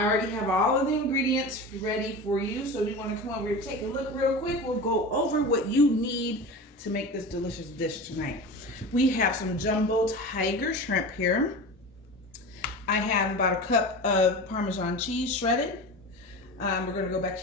already have all of the ingredients ready for you. So we want to come over here, take a look real quick. We'll go over what you need to make this delicious dish tonight. We have some jumbo tiger shrimp here. I have about a cup of Parmesan cheese shredded. We're going to go back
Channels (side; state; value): both; normal; correlation 0.30